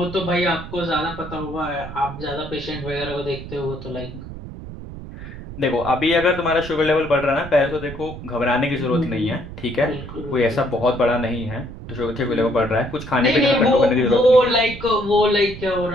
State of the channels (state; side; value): noise; right; rumble, 12 dB below the sound